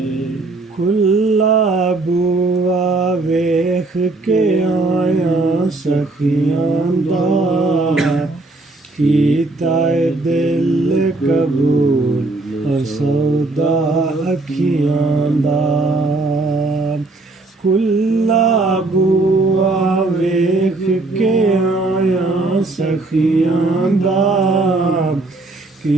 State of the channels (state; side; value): quieter; left; 3.2 dB